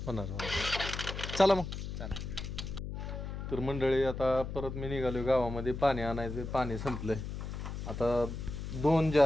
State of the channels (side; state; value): left; noise; hum, 6 dB below the sound